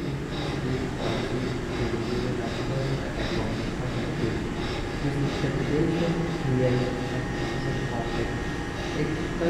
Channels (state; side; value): identical; both; correlation 1.00